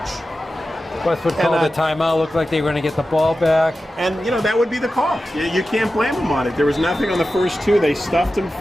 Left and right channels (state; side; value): normal; both; correlation 0.93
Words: Westwood called the timeout. Looked like they were going to get the ball back. And, that would be the call. You can't blame them on it. There was nothing on the first two. They stuffed him